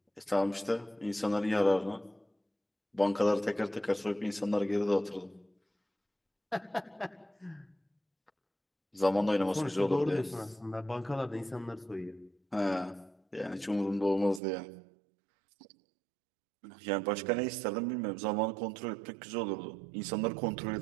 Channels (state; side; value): drops out; left; at 14.4 s